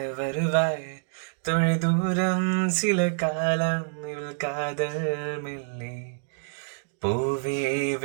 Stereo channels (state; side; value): silent; left; digital silence